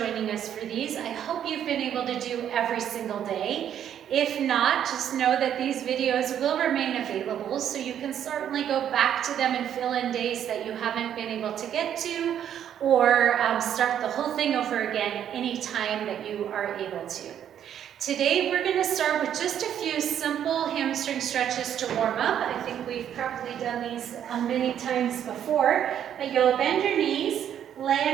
us for these. I hope you've been able to do every single day. If not, just know that these videos will remain available, so you can certainly go back to them and fill in days that you haven't been able to get to, or start the whole thing over again anytime that you are able to. Today we're going to start with just a few simple hamstring stretches to warm up. I think we've probably done these many times before, but you'll bend your knees, lay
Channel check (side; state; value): left; quieter; 9.7 dB